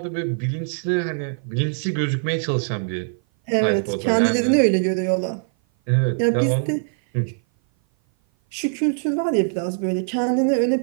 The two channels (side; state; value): left; silent; 57 dB below the other